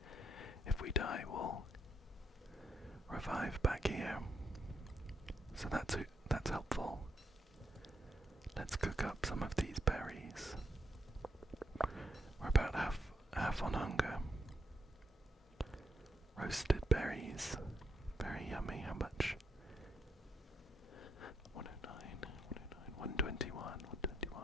If we die, we'll revive back here. So that's helpful. Let's cook up some of these berries. We're about half on hunger. Roasted berries. Very yummy. How much? 121.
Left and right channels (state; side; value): normal; both; correlation 0.78